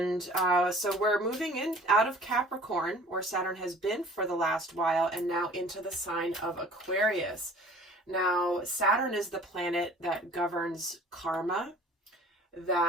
so we're moving in out of Capricorn, where Saturn has been for the last while, and now into the sign of Aquarius. Now, Saturn is the planet that governs karma,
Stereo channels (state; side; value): normal; both; correlation 0.49